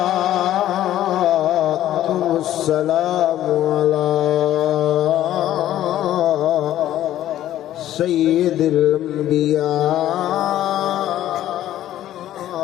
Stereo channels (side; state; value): right; quieter; 12.7 dB